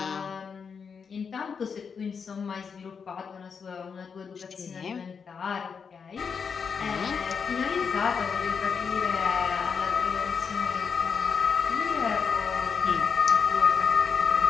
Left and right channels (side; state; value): right; quieter; 6.1 dB